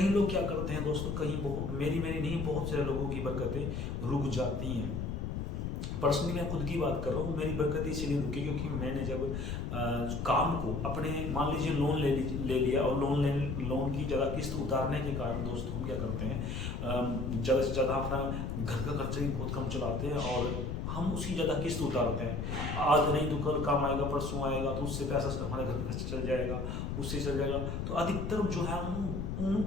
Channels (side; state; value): left; noise; rumble, 3 dB below the sound